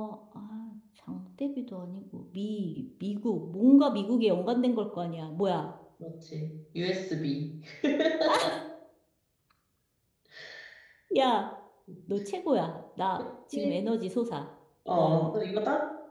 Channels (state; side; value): identical; both; correlation 1.00